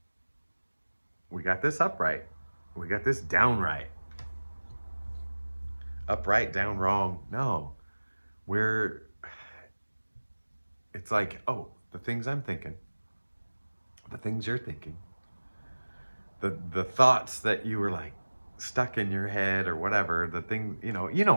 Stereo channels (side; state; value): both; inverted; correlation -1.00